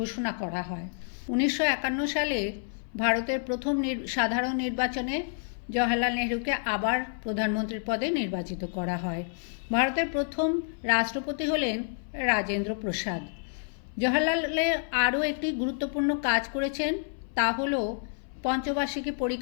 করা হয়। 1951 সালে ভারতের প্রথম সাধারণ নির্বাচনে জওহরলাল নেহরুকে আবার প্রধানমন্ত্রীর পদে নির্বাচিত করা হয়। ভারতের প্রথম রাষ্ট্রপতি হলেন রাজেন্দ্র প্রসাদ। জওহরলালের আরও একটি গুরুত্বপূর্ণ কাজ করেছেন, তা হল পঞ্চবার্ষিকী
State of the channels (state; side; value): silent; right; 59 dB below the other